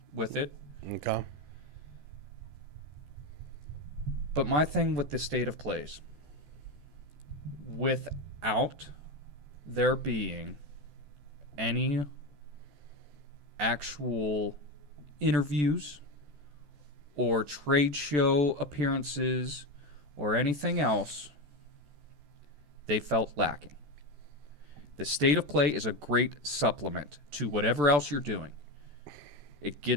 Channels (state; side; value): late; left; 14 ms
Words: with it. Okay. But my thing with the state of plays, without there being any actual interviews or trade show appearances or anything else, they felt lacking. The state of play is a great supplement to whatever else you're doing. It